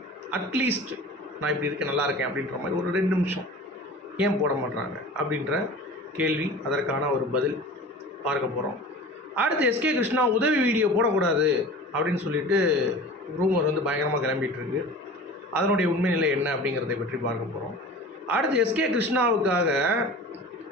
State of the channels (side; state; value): both; normal; correlation 0.38